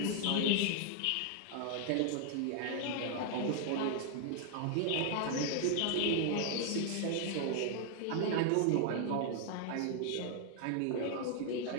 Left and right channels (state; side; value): different; both; correlation 0.00